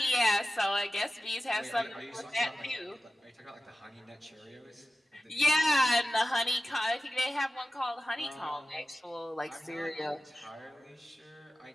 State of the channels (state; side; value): normal; both; correlation 0.95